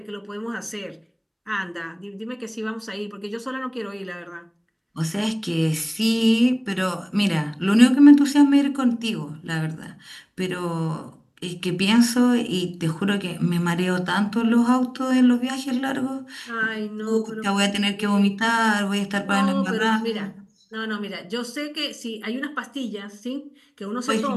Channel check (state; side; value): identical; both; correlation 1.00